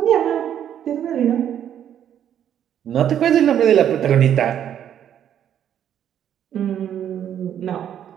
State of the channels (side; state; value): left; quieter; 9.9 dB